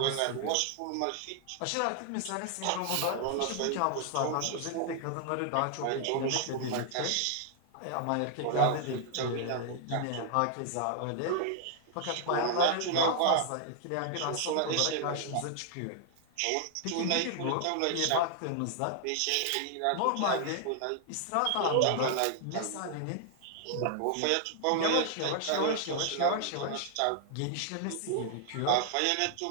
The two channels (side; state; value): both; different; correlation 0.00